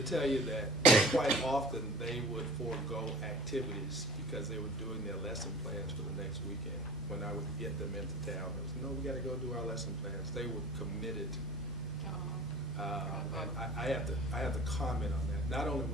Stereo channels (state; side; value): normal; both; correlation 0.43